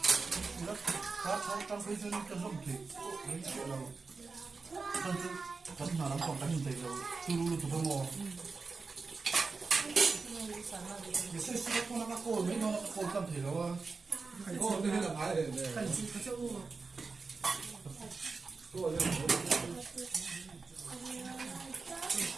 nó khá trong cái chân cái rộng thì đấy chuyện lâu chân chân chân nào lắm còn đánh dậy lâu chu lu tụi nó cái xoay xoay con nó cô mấy nó cô cầm thể lâu à cô đây là phải để cần gì có chỗ cô đây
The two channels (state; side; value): quieter; left; 4.4 dB